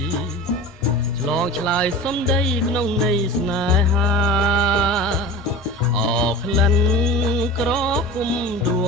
ឆ្លងឆ្លើយសំដីក្នុងន័យស្នេហាអក្លិនក្រពុំដួ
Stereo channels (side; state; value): both; normal; correlation 0.33